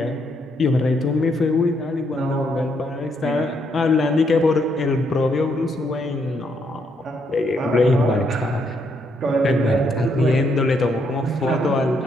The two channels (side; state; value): both; normal; correlation 0.75